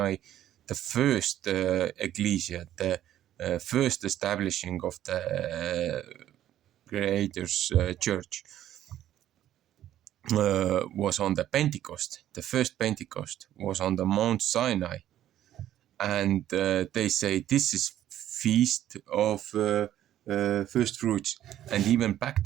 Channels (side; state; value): left; quieter; 12.1 dB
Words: the first ecclesia, the first establishing of the Creator's church. Was on the Pentecost. The first Pentecost was on the Mount Sinai, and they say this is feast of first fruits. And even back